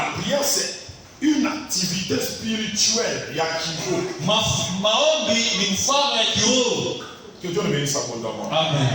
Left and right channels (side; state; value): both; identical; correlation 1.00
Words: prière, c'est une activité spirituelle. Que Dieu ne bénisse abondamment.